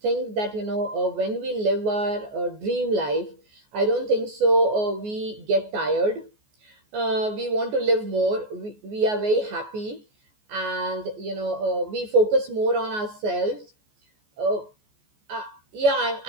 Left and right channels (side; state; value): left; late; 14 ms